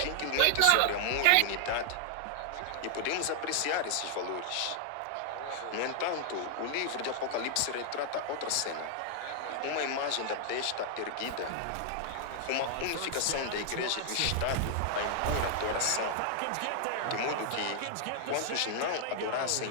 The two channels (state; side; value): different; both; correlation 0.00